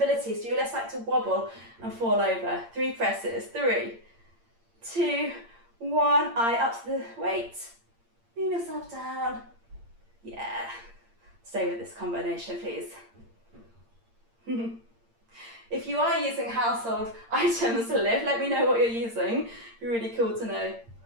so you're less likely to wobble and fall over. 3 presses. 3, 2, 1. Eye up to the weight. Lean yourself down. Yeah. Stay with this combination, please. If you are using household items to lift, let me know what you're using. It'd be really cool to know.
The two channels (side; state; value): left; late; 8.7 ms